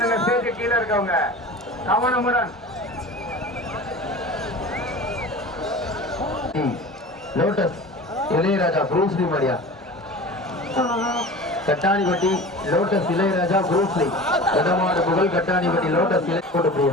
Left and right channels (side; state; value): both; normal; correlation 0.36